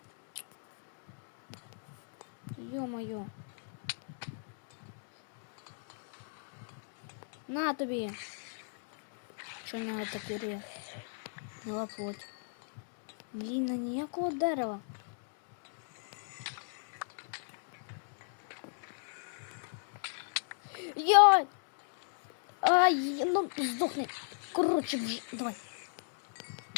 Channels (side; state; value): right; silent; digital silence